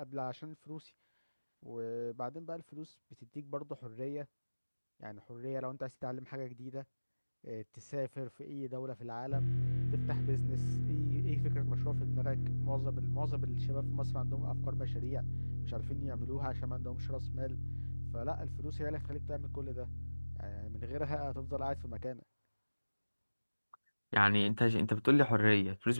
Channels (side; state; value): both; inverted; correlation -1.00